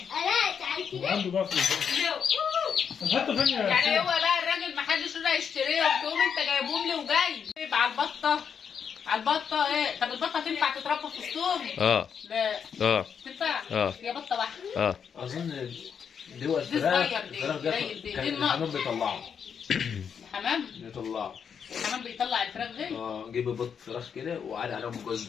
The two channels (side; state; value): right; quieter; 7.2 dB